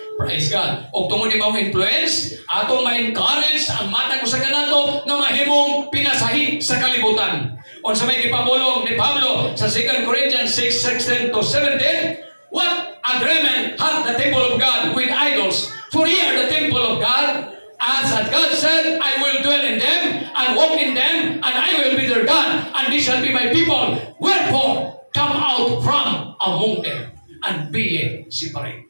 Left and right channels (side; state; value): both; inverted; correlation -1.00